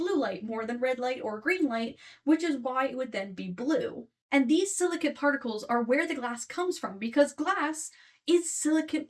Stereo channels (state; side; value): identical; both; correlation 1.00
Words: light more than red light or green light, which is why it would then be blue. And these silicate particles are where the glass comes from because glass is silicate